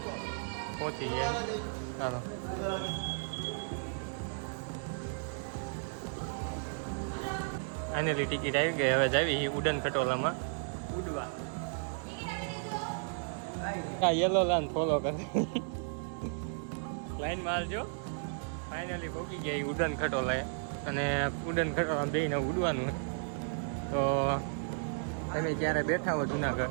પહોંચી ગયા. ચાલો ફાઇનલી ટિકિટ આવી ગઈ. હવે જાવી ઉડન ખટોલામાં ઉડવા. આ યલો લાઈન ફોલો કરે લાઈનમાં હાલજો. ફાઇનલી પહોંચી ગયા ઉડન ખટોલાએ અને ઉડન ખટોલા બેને ઉડવાનું. તો તમે ક્યારે બેઠા હો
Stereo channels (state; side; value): silent; left; digital silence